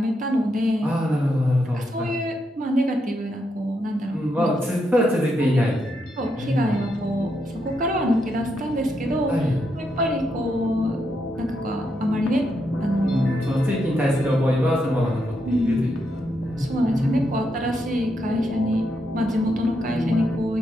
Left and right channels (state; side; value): normal; both; correlation 0.81